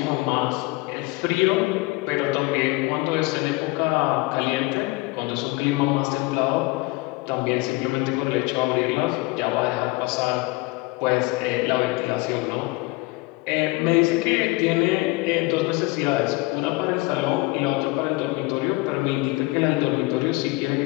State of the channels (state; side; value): quieter; right; 22.8 dB